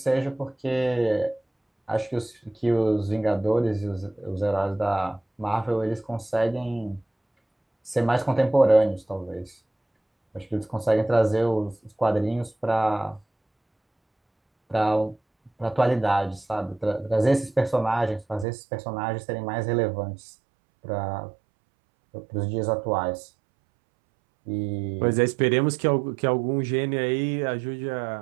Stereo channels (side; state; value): left; drops out; at 18.4 s